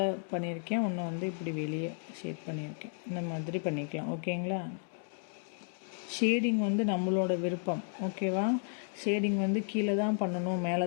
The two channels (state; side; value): silent; right; 56 dB below the other